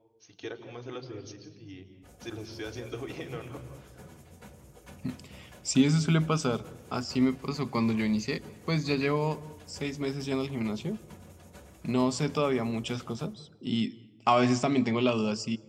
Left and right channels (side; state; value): both; identical; correlation 1.00